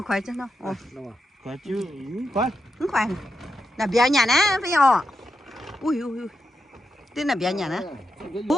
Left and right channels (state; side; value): normal; both; correlation 0.86